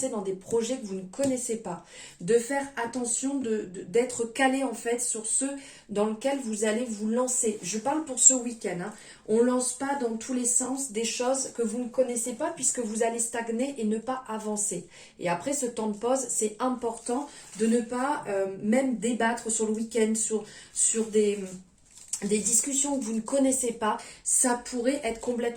dans des projets que vous ne connaissez pas, de faire attention, d'être calé en fait sur ceux dans lesquels vous allez vous lancer. Je parle pour ce week-end, hein. On ne lance pas dans tous les sens des choses que vous ne connaissez pas puisque vous allez stagner et ne pas avancer. Et après ce temps de pause, c'est important de ne pas même débattre sur le week-end, sur des discussions que vous ne connaissez pas. Ça pourrait être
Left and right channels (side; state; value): both; identical; correlation 1.00